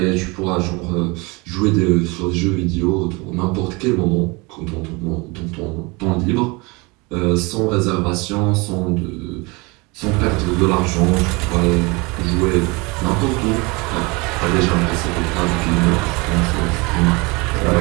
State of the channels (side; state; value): left; quieter; 26.6 dB